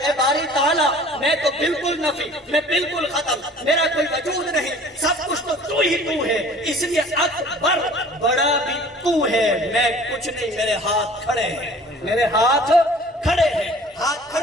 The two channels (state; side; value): normal; both; correlation 0.48